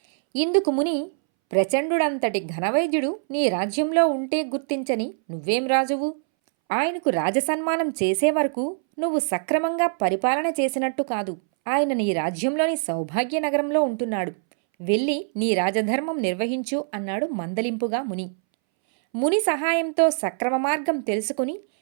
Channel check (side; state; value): left; silent; 63 dB below the other